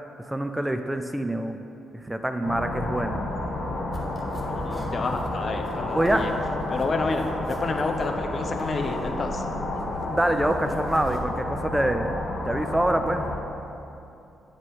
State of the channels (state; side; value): normal; both; correlation 0.87